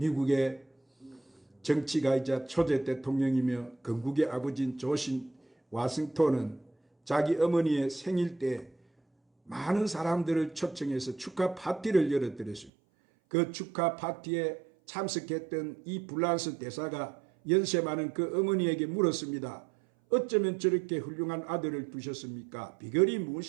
정치가이자 초대 대통령이며 건국의 아버지인 조지 워싱턴은 자기 어머니의 생일 때 많은 사람들을 초청해서 축하 파티를 열어드렸습니다. 그 축하 파티에 참석했던 이 불란스 대사가 연세 많은 그 어머니에게 물었습니다. 어쩌면 저렇게 훌륭한 아들을 두셨습니까? 비결이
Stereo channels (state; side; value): drops out; left; at 12.7 s